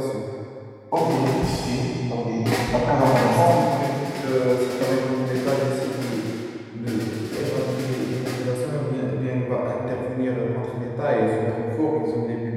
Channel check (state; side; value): identical; both; correlation 1.00